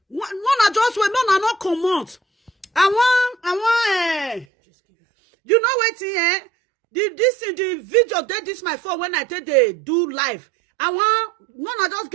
One just wait, no, not come out. I want, you know what, the video, this my phone when I take they do live. I want, just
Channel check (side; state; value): left; drops out; at 4.5 s